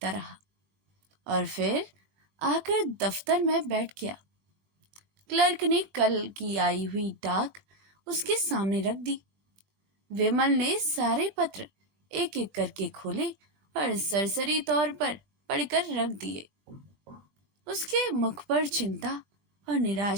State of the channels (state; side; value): late; left; 21 ms